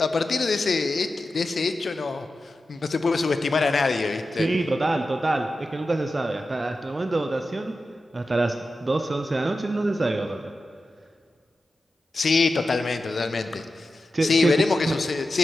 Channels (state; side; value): normal; both; correlation 0.92